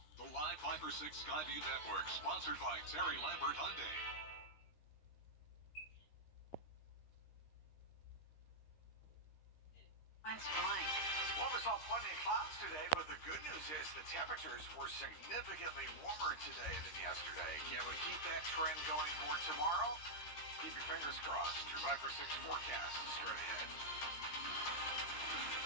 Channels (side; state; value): right; late; 13 ms